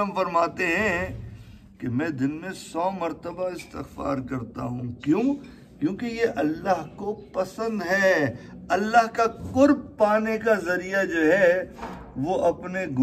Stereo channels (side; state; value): both; identical; correlation 1.00